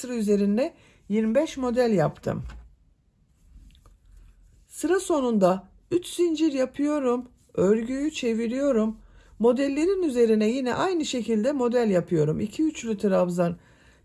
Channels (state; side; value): identical; both; correlation 1.00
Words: üzerinde 25 model yaptım. Sıra sonunda 3 zincir yapıyorum. Örgüyü çeviriyorum. Modellerin üzerine yine aynı şekilde model yapıyorum. 2 üçlü trabzan,